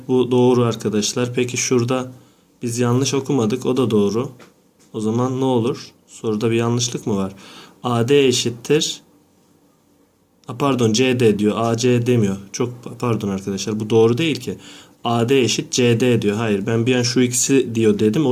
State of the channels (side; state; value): both; identical; correlation 1.00